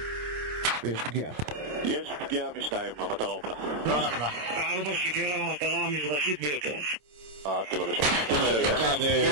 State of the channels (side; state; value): left; late; 27 ms